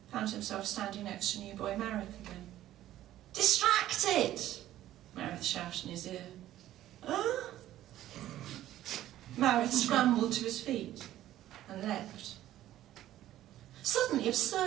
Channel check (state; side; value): quieter; left; 13.5 dB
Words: found himself standing next to new boy Marith again. "Distracted!" Marith shouted in his ear. "Huh?" Marith scrambled to his feet and leapt. Suddenly,